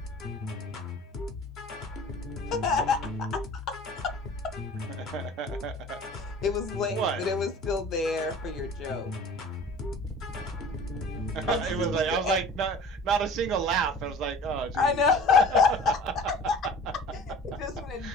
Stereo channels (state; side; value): normal; both; correlation 0.44